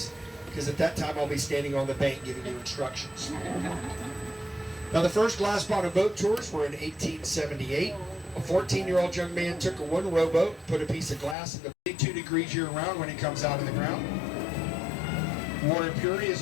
because at that time I'll be standing on the bank giving you instructions. Now, the first glass bottom boat tours were in 1878. A 14-year-old young man took a one rowboat, put a piece of glass in the 2 degrees year-round when it comes out of the ground. Water purity is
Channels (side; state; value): right; drops out; at 11.4 s